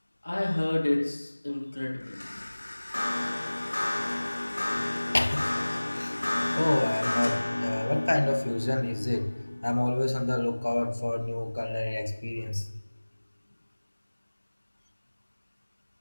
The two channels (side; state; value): both; inverted; correlation -1.00